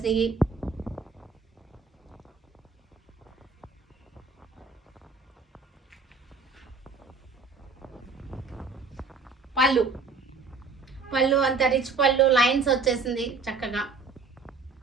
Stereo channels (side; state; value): left; quieter; 4.3 dB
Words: పళ్ళు అంత రిచ్ పళ్ళు, లైన్స్ వచ్చేసింది చక్కగా.